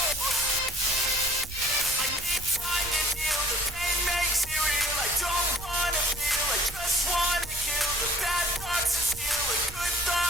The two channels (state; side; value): noise; right; rumble, 13 dB below the sound